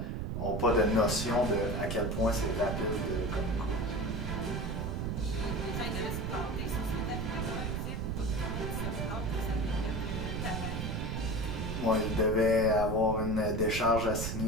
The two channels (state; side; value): noise; right; rumble, 2 dB below the sound